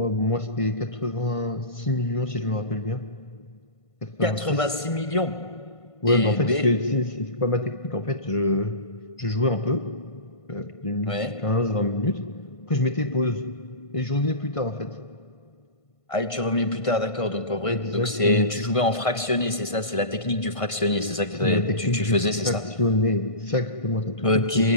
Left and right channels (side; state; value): right; late; 1.5 ms